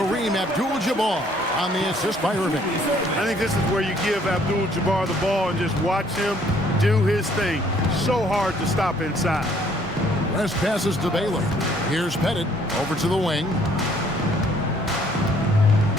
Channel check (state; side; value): normal; both; correlation 0.62